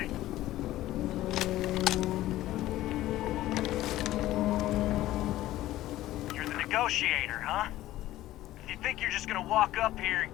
You're the negotiator, huh? If you think you're just gonna walk up here and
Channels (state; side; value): quieter; right; 15.2 dB